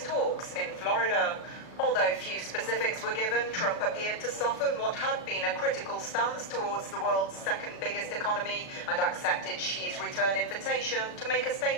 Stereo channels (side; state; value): right; late; 36 ms